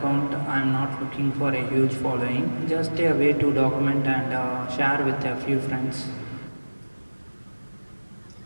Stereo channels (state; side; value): inverted; both; correlation -1.00